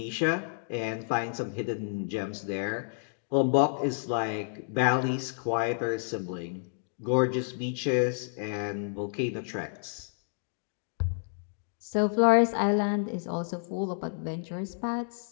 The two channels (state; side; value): silent; right; digital silence